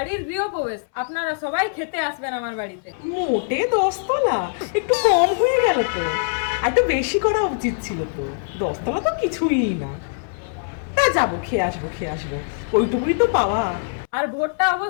গৃহপ্রবেশ, আপনারা সবাই খেতে আসবেন আমার বাড়িতে। মোটে 10 তলা একটু কম হয়ে গেল তো, আর একটু বেশি করা উচিত ছিল তো। 10 তলা তো কিছুই না। তা যাবো, খেয়ে আসবো, ওইটুকুই তো পাওয়া। আর ভোটটা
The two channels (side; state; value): right; silent; 64 dB below the other